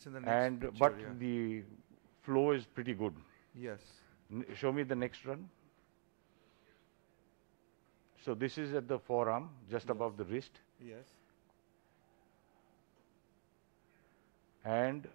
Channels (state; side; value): silent; left; digital silence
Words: in the next picture, but the flow is pretty good. Yes. Show me the next run. So this is at the forearm, just above the wrist. Yes. And